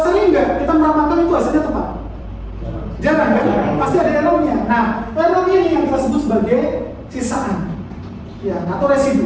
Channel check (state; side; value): identical; both; correlation 1.00